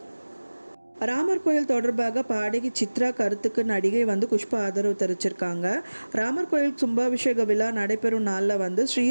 ராமர் கோயில் தொடர்பாக பாடகி சித்ரா கருத்துக்கு நடிகை வந்து குஷ்பா ஆதரவு தெரிவிச்சிருக்காங்க. ராமர் கோயில் கும்பாபிஷேக விழா நடைபெறும் நாளில் வந்து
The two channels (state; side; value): inverted; both; correlation -1.00